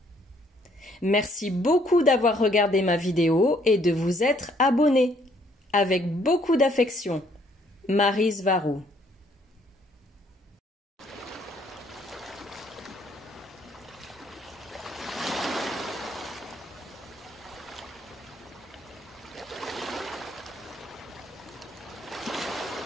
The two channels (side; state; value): both; normal; correlation 0.65